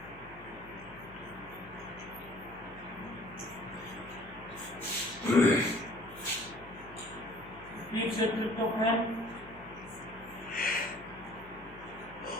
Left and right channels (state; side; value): noise; left; hum, 20 dB below the sound